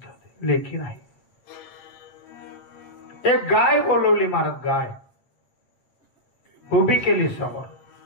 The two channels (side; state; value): right; late; 8.1 ms